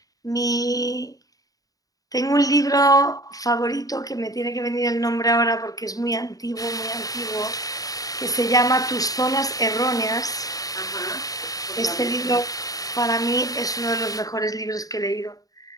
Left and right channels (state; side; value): late; right; 0.18 ms